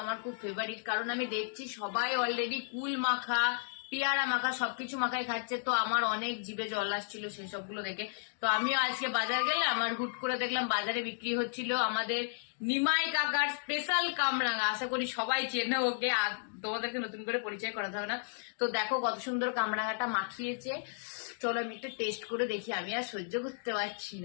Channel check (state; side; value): silent; right; digital silence